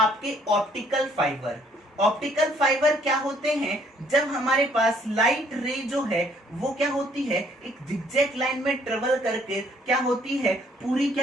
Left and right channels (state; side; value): normal; both; correlation 0.64